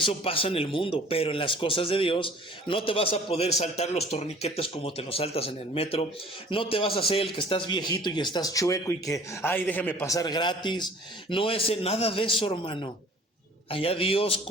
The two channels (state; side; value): normal; both; correlation 0.50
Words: pasa en el mundo, pero en las cosas de Dios no te vas a poder saltar los torniquetes como te los saltas en el metro. No te vas a hacer el que estás viejito y estás chueco y que, ay, déjame pasar gratis. No es nada de eso, hermano. Allá Dios